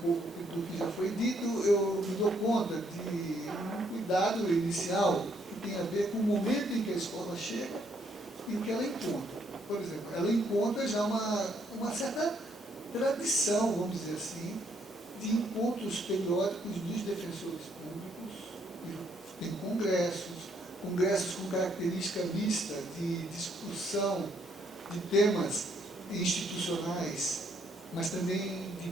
do que já foi dito, eu me dou conta de um cuidado inicial que tem a ver com o momento em que a escola chega e o que ela encontra. Por exemplo, ela encontra já uma certa tradição, vamos dizer assim, de encontros periódicos dos defensores públicos, tem congressos com característica mista de discussão de temas institucionais, mas também de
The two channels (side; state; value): both; normal; correlation 0.70